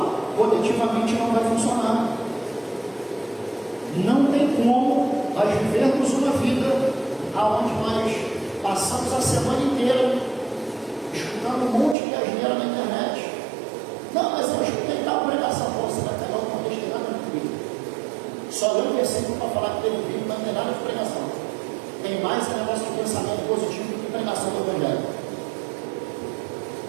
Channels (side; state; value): left; drops out; at 12.0 s